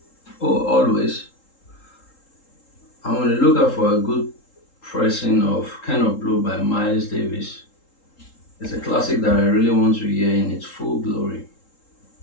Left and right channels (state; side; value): late; right; 3.8 ms